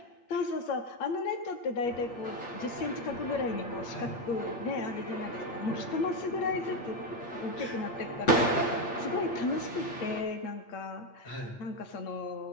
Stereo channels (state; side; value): late; right; 8.5 ms